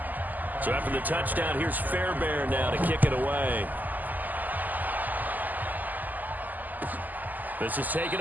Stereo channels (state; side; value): late; left; 0.083 ms